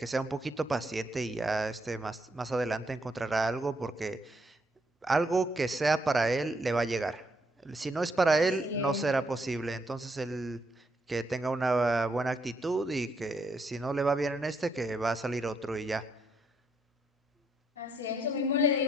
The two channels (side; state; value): both; normal; correlation 0.74